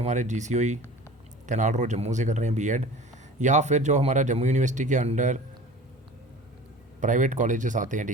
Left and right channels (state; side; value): normal; both; correlation 0.40